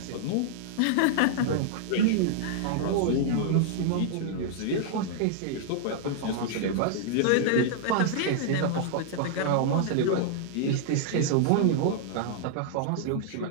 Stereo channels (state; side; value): different; both; correlation -0.01